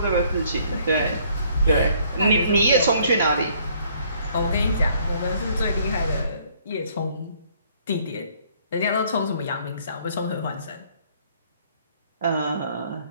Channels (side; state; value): both; inverted; correlation -0.62